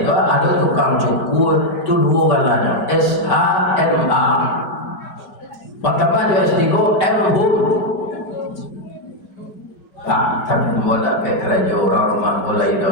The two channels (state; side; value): late; right; 5.0 ms